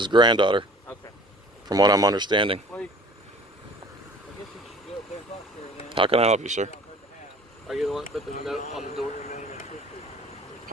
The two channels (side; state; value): both; normal; correlation 0.48